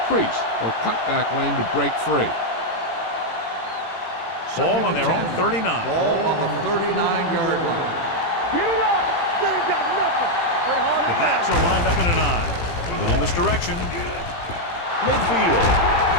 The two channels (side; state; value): right; late; 18 ms